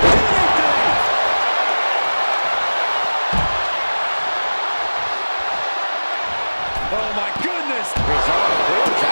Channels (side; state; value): both; inverted; correlation -1.00